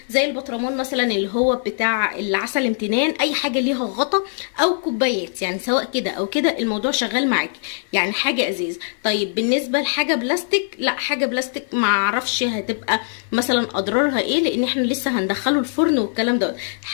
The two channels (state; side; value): silent; right; 56 dB below the other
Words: زي البطرمان مثلا اللي هو بتاع العسل امتنان، اي حاجه ليها غطا، او كوبايات، يعني سواء كده او كده الموضوع شغال معاكي، يعني حاجه ازاز. طيب بالنسبه لحاجه بلاستيك، لا حاجه بلاستيك ما اعرفش هتبقى مثلا اضرارها ايه، لان احنا لسه هندخله الفرن والكلام ده.